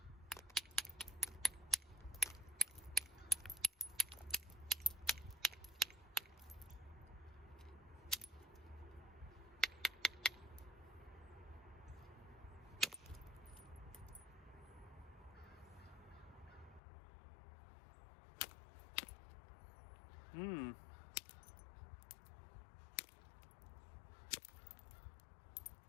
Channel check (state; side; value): drops out; right; at 16.8 s